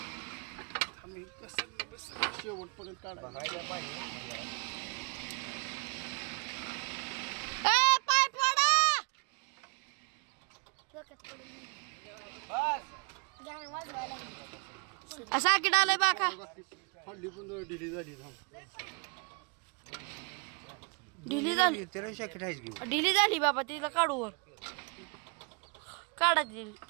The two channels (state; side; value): quieter; left; 31.7 dB